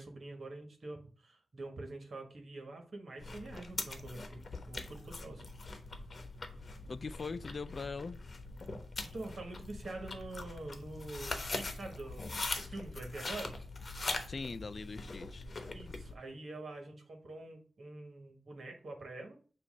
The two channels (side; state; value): both; normal; correlation 0.90